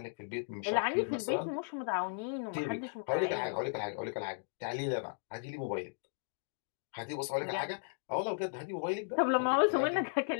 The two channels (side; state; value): right; silent; digital silence